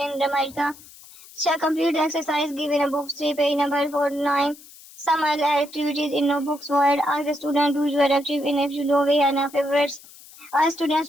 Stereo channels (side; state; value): left; noise; hiss, 21 dB below the sound